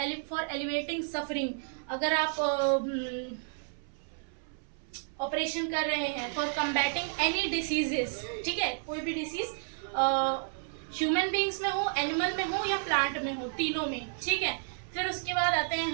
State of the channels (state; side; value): silent; left; 57 dB below the other